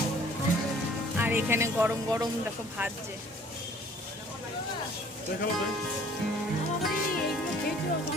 আর এখানে গরম গরম দেখো ভাজছে।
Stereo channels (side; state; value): both; normal; correlation 0.54